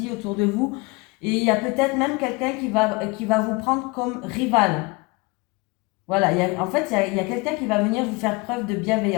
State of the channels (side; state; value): right; quieter; 25.5 dB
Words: autour de vous. Et il y a peut-être même quelqu'un qui va vous prendre comme rival. Voilà, en fait, il y a quelqu'un qui va venir vous faire preuve de